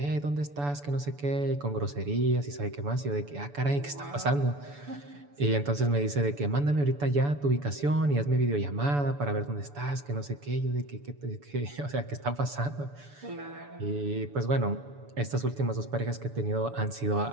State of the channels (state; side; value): late; left; 6.9 ms